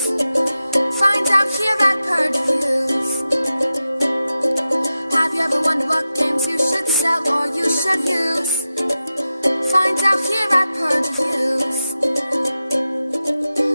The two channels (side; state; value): both; inverted; correlation -0.93